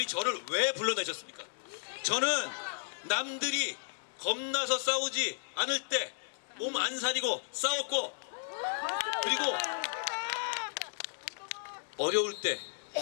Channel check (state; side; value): silent; right; digital silence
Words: 저를 왜 불러내셨습니까? 저는 남들이 겁나서 싸우지 않을 때 몸 안 사리고 싸웠고, 그리고 어려울 때